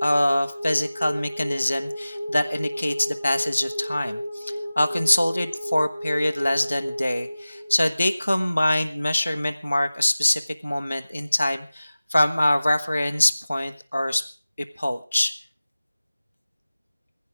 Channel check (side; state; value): both; inverted; correlation -0.96